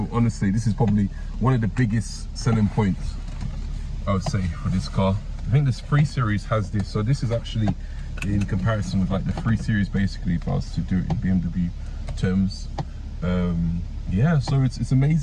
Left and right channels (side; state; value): both; identical; correlation 1.00